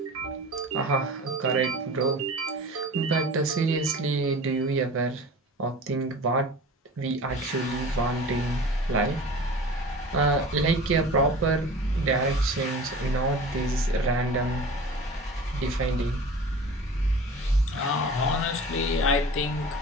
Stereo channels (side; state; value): both; normal; correlation 0.38